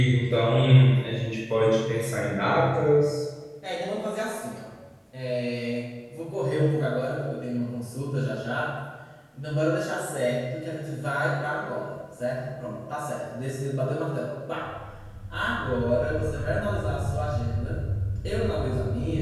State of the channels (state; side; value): identical; both; correlation 1.00